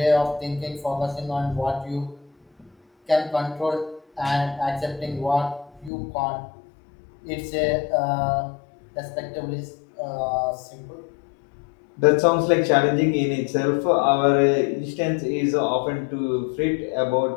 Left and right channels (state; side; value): drops out; right; at 5.9 s